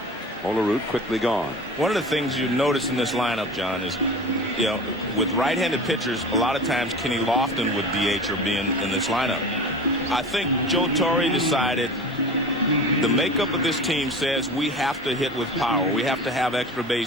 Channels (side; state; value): both; normal; correlation 0.35